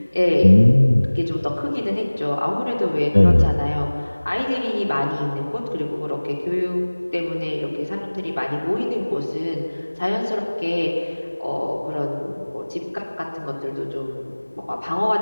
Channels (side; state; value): both; inverted; correlation -1.00